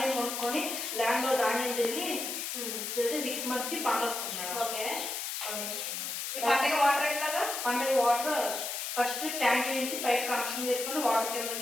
కొనుక్కొని ల్యాండ్ లో ధాన్యం చేసి 6 months కి పంట వస్తుంది మేడం. పంటకి వాటర్ ఫస్ట్ ట్యాంక్ నుంచి పైప్ కనెక్షన్ చేసుకొని వాటర్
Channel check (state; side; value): noise; left; hiss, 4 dB below the sound